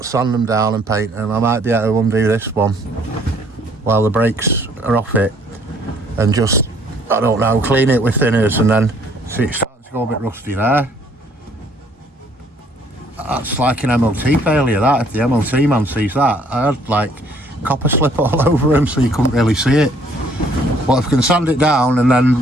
sand them down and paint them. I might be able to undo this one while the brakes are off it and just, I don't know, clean it with thinners, and then see it's starting to go a bit rusty there. That's like an MOT failure, that. If the MOT man sees that, I had like copper slip all over him so you couldn't really see it. But if I can sand it down and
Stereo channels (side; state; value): both; normal; correlation 0.62